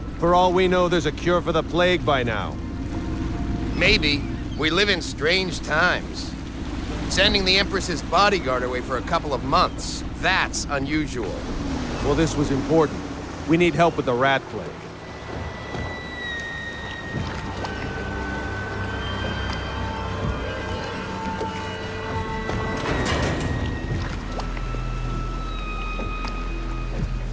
For all we know, there's a cure for the plague by now. Maybe. We live in strange times. Sending the Empress's bodyguard away for a couple of months. That's unusual. Well, this was important. We need help with the rat plague.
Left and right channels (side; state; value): both; identical; correlation 1.00